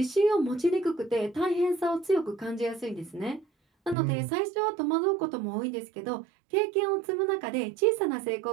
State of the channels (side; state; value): left; drops out; at 4.0 s